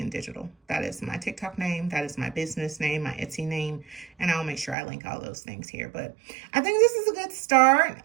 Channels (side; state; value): left; drops out; at 4.8 s